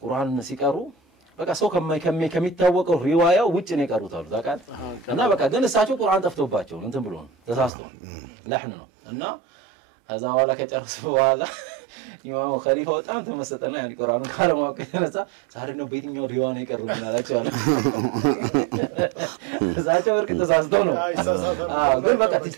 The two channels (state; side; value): drops out; left; at 7.7 s